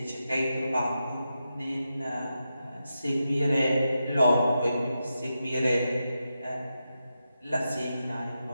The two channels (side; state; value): both; inverted; correlation -0.88